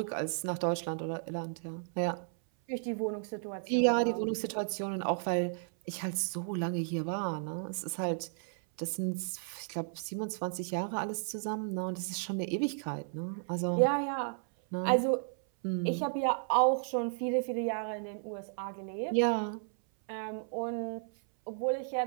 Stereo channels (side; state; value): left; silent; 55 dB below the other